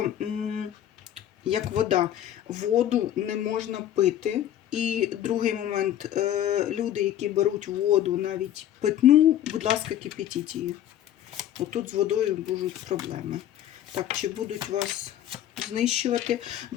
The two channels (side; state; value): right; quieter; 11.4 dB